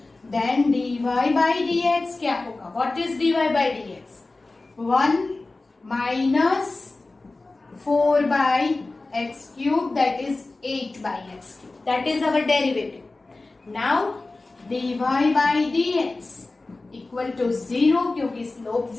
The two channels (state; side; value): quieter; right; 3.3 dB